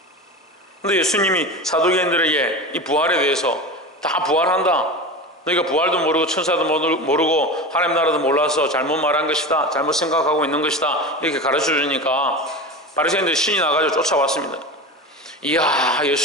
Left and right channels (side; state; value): both; normal; correlation 0.28